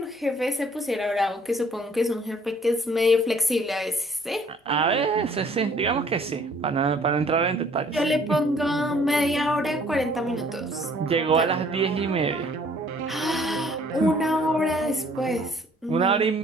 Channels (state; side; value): normal; both; correlation 0.58